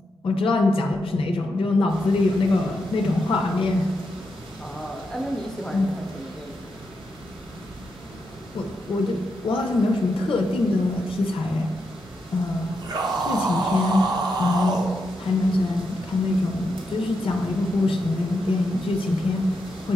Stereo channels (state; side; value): normal; both; correlation 0.84